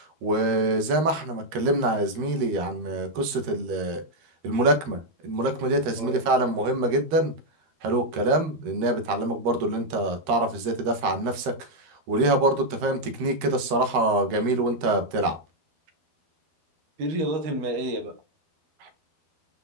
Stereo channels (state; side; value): late; left; 13 ms